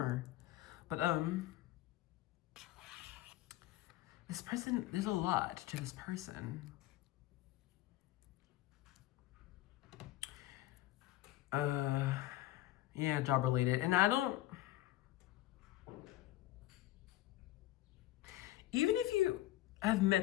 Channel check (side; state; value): right; quieter; 15.3 dB